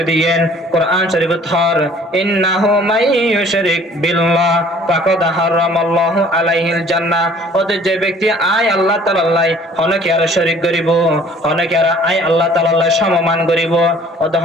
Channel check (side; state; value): both; normal; correlation 0.54